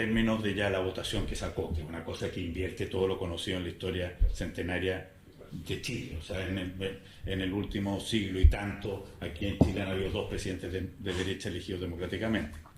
de ya la votación que sacó, que es una cosa que invierte todo lo conocido en la historia centenaria de Chile. O sea, en el último siglo y tanto, aquí en Chile han habido 2 presidentes de derecha elegidos democráticamente,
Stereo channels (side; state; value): both; identical; correlation 1.00